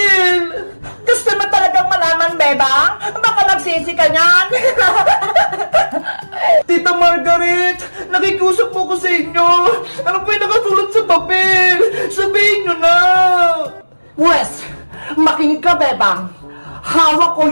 Gusto mo talagang malaman, Bebang? Baka nagsisi ka niyan! Tita Margaret! Nakikusap po ko sa inyo! Ano po yung nakasulat sa papel? Sabihin nyo na! Wes! Makinig ka, Bebang! Hawak ko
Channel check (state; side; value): inverted; both; correlation -1.00